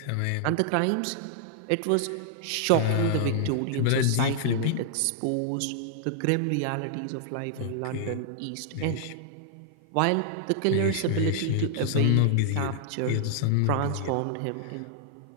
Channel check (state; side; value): different; both; correlation -0.01